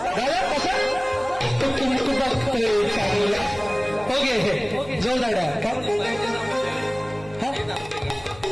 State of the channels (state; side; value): noise; left; hum, 20 dB below the sound